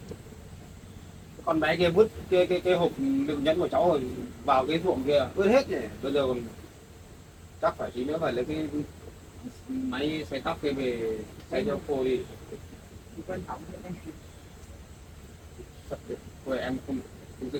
Con bé kia vứt cái hộp đựng nhẫn của cháu rồi vào cái ruộng kia vứt hết nhỉ. Bây giờ còn chắc phải tí nữa phải lấy cái máy xay tóc kia về xay cho cô đi. Quan trọng thế này. Thôi em không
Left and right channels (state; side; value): identical; both; correlation 1.00